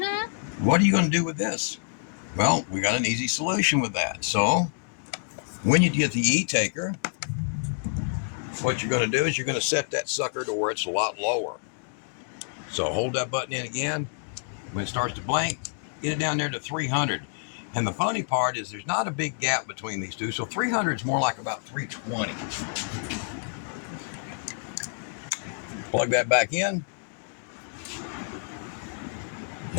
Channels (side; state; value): right; silent; digital silence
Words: What are you going to do with this? Well, we got an easy solution with that. So, when you get the Etaker, what you're going to do is you're going to set that sucker to where it's a lot lower. So, hold that button in again. When it starts to blink, get it down there to 300. And the funny part is there's not a big gap between these two. So, 300 is more like about 320. Plug that back in.